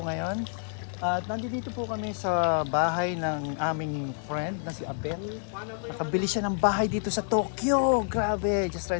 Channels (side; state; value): right; silent; 59 dB below the other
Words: ngayon. At nandito po kami sa bahay ng aming friend na si Abel. Nakabili siya ng bahay dito sa Tokyo. Grabe, just try